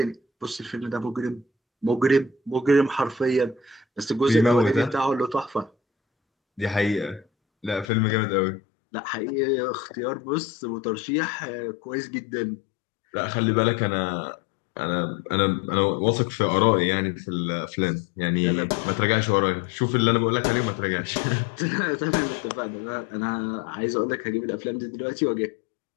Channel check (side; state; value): right; drops out; at 7.9 s